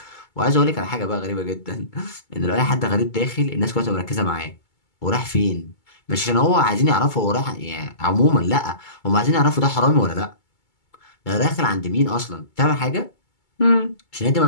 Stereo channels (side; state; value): right; late; 2.2 ms